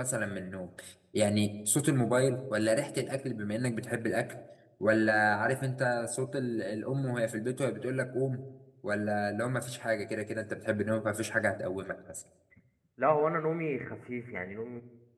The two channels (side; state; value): both; identical; correlation 1.00